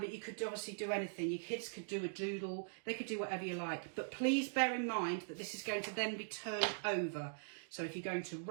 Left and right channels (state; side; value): silent; left; digital silence